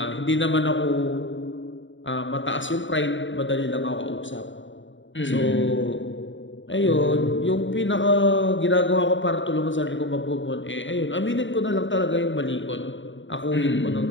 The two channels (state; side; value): late; right; 0.55 ms